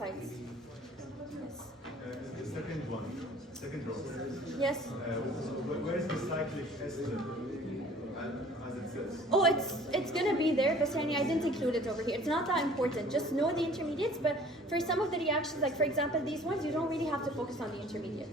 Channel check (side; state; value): both; normal; correlation 0.50